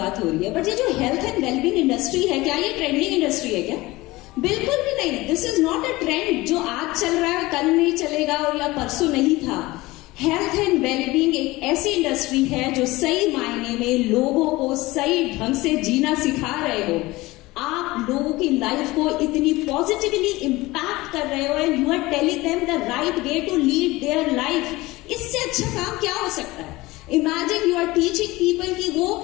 हो रही है, बट ये जो हेल्थ एंड वेलबींग इंडस्ट्री है, क्या ये ट्रेंडिंग इंडस्ट्री है क्या? बिल्कुल भी नहीं। This is not a trend जो आज चल रहा है कल नहीं चलेगा और या परसों नहीं था। हेल्थ एंड वेलबींग एक ऐसी इंडस्ट्री है जो सही मायने में लोगों को सही ढंग से जीना सिखा रहे हो। आप लोगों की लाइफ को इतनी पॉजिटिवली इंपैक्ट कर रहे हो and you are telling them the right way to lead their life. इससे अच्छा काम क्या हो सकता है? Imagine you are teaching people कि वो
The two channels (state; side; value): quieter; right; 20.2 dB